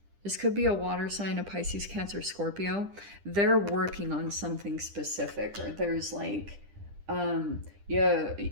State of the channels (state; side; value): late; left; 10 ms